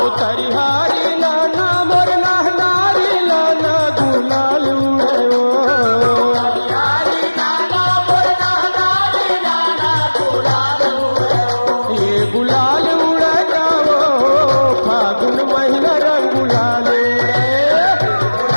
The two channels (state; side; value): inverted; both; correlation -1.00